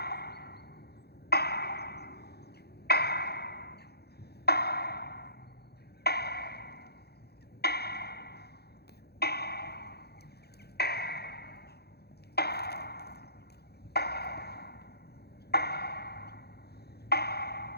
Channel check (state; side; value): late; right; 0.47 ms